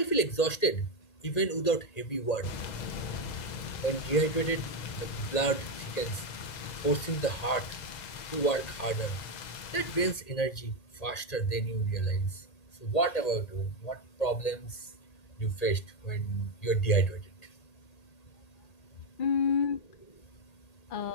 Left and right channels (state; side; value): late; right; 1.8 ms